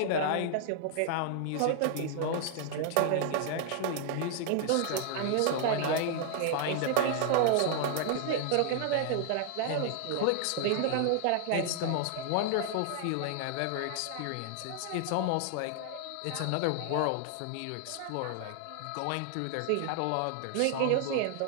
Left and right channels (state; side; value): different; both; correlation 0.00